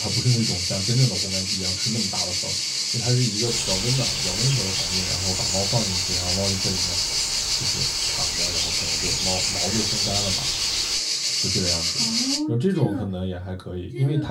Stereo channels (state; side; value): identical; both; correlation 1.00